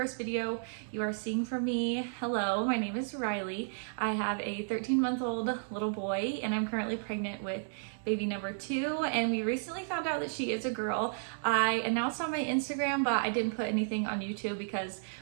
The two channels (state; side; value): silent; left; digital silence